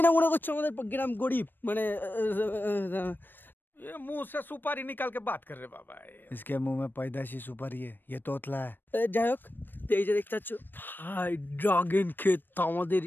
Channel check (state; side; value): late; right; 0.094 ms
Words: না মনে করছো আমাদের গ্রাম গরিব মানে ये मुंह से सुपारी निकाल के बात कर रहे बाबा इसके मुंह में पैदाशी सुपारी है ये तोतला है যাই হোক এই যে দেখতে পাচ্ছ ভাই ড্রাগন ক্ষেত আমাদের